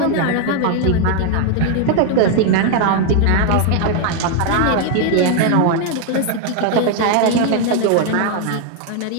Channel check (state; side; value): different; both; correlation 0.00